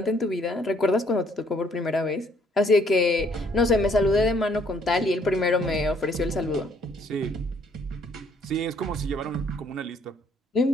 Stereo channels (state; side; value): normal; both; correlation 0.64